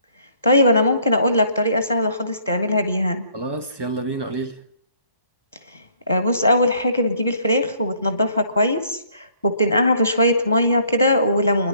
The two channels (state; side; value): inverted; both; correlation -0.62